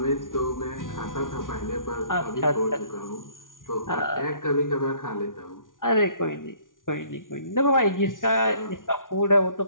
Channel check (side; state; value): right; late; 0.89 ms